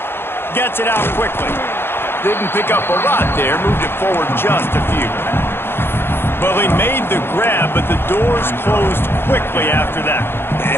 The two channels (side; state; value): right; late; 0.11 ms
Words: Gets it out quickly. Didn't pick up a lot there, moved it forward just a few. Well, he made the grab, but the doors closed quickly after that.